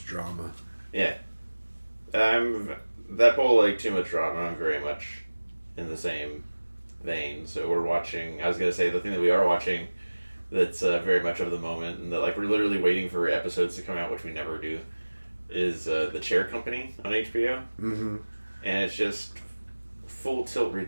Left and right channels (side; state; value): both; inverted; correlation -1.00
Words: drama. Yeah. That whole like too much drama, I'm very much in the same vein. So we're watching, I was going to say the thing that we are watching that's very much of the moment and that like we're literally waiting for episodes to come out, which we never do, is The Chair Company on HBO. Mm-hmm. And it's just full tilt